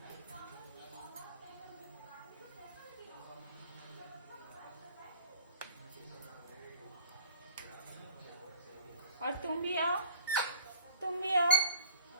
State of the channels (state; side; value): inverted; both; correlation -0.44